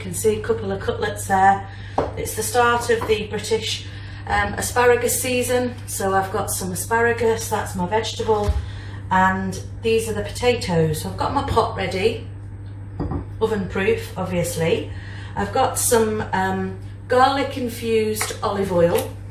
see, a couple of cutlets there. It's the start of the British asparagus season, so I've got some asparagus, that's my vegetable, and these are the potatoes. So I've got my pot ready, oven proof obviously. I've got some garlic infused olive oil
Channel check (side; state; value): both; identical; correlation 1.00